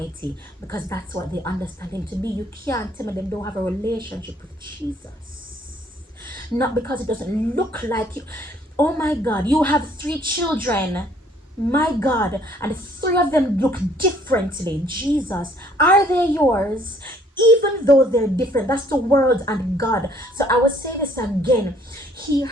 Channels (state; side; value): normal; both; correlation 0.61